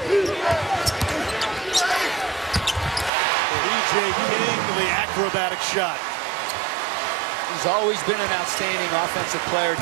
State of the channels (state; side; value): drops out; left; at 3.1 s